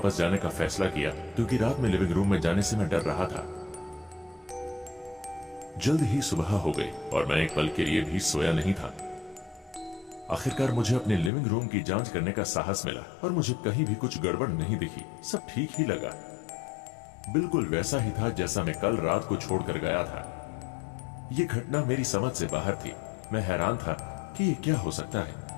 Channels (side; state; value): right; drops out; at 11.3 s